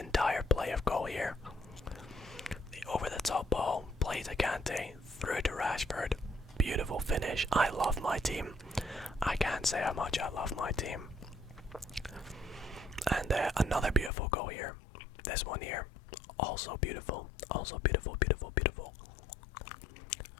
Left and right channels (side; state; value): right; drops out; at 14.1 s